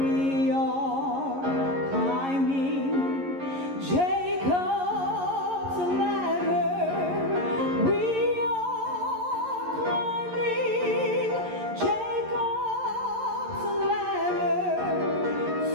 are climbing Jacob's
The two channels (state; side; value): late; left; 11 ms